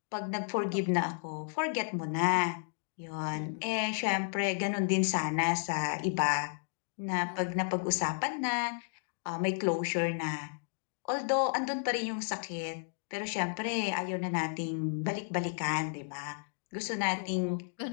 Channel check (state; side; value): silent; right; digital silence